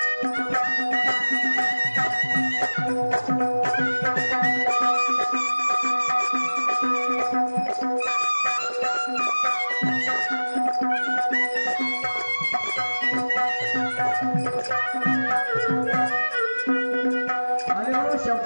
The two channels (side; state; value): both; inverted; correlation -1.00